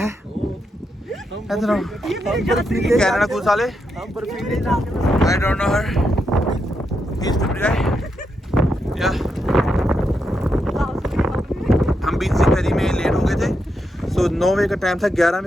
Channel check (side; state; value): both; normal; correlation 0.83